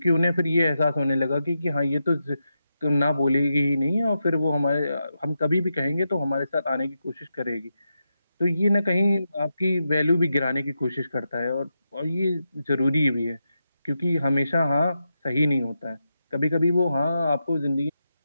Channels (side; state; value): both; inverted; correlation -0.87